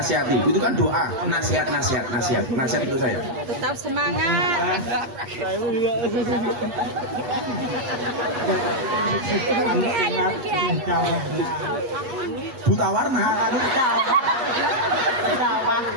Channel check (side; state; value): left; late; 8.3 ms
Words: itu kan doa. Nasihat untuk saya. Tetap semangat. Buta warna.